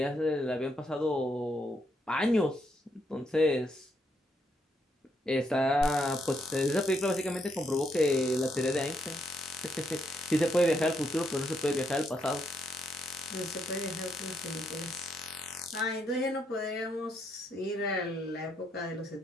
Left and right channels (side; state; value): both; normal; correlation 0.76